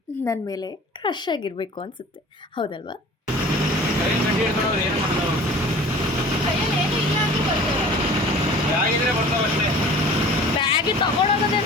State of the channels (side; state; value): both; normal; correlation 0.44